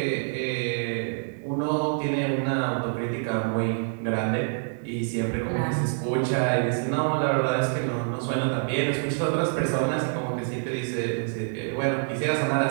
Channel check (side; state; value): left; silent; digital silence